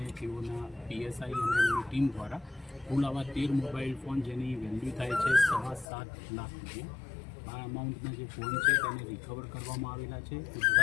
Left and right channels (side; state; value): right; drops out; at 5.9 s